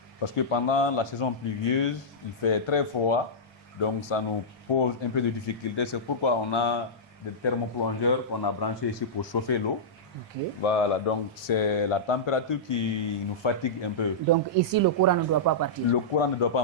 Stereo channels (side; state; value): both; normal; correlation -0.13